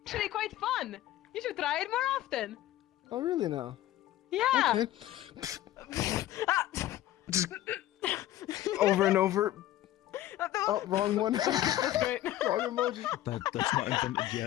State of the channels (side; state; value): right; quieter; 13.9 dB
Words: Actually quite fun. You should try it more often. Oh, really now? Yeah. Okay. Just over and over. Oh, wrong one. Wrong emoji. That's not invented